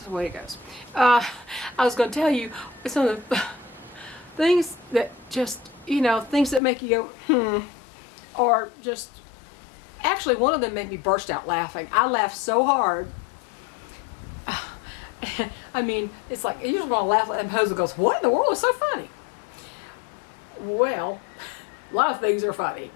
the way it goes. I was going to tell you some of the things that just, things that make you go, or just, actually one of them made me burst out laughing. I laughed so hard. I mean, it's like, you just want to laugh, and Jose goes, what in the world is so funny? Well, a lot of things are funny,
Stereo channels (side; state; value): right; drops out; at 6.6 s